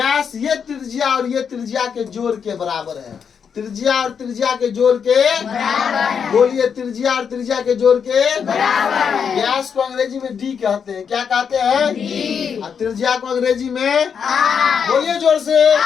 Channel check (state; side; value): quieter; right; 6.9 dB